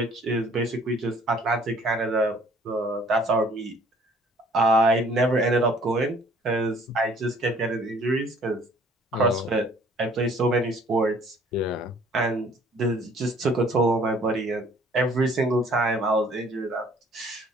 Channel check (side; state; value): both; normal; correlation 0.56